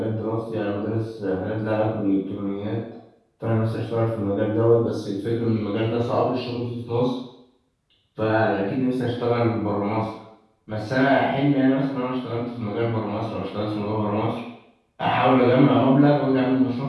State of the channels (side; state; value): both; identical; correlation 1.00